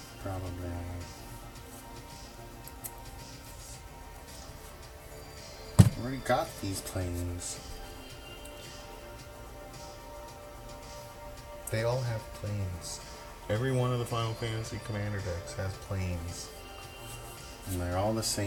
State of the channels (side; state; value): both; identical; correlation 1.00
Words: Probably. Already got these planes. They all have planes. Every one of the Final Fantasy Commander decks has planes. And they're all the